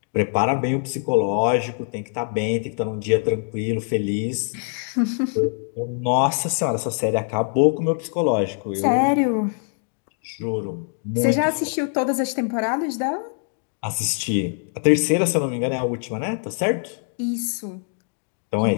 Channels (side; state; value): right; silent; 55 dB below the other